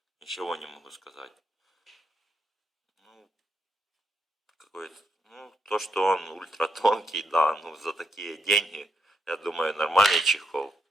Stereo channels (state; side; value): normal; both; correlation 0.80